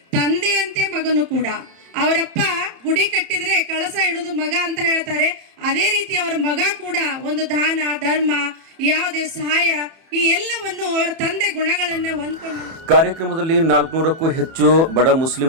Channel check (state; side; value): late; left; 31 ms